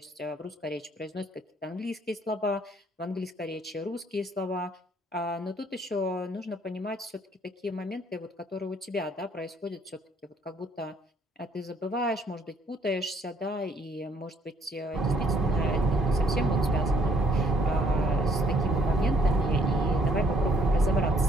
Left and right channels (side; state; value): both; normal; correlation 0.64